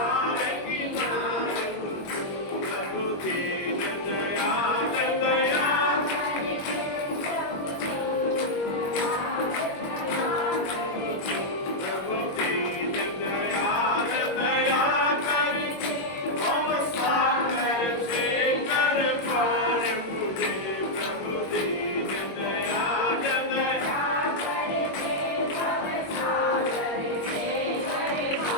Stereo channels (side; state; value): right; late; 21 ms